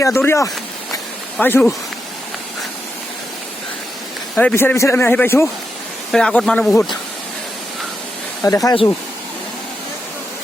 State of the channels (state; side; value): normal; both; correlation 0.85